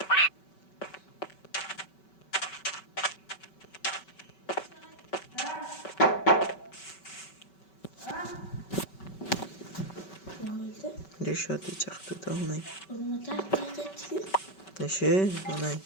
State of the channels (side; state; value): right; late; 5.2 ms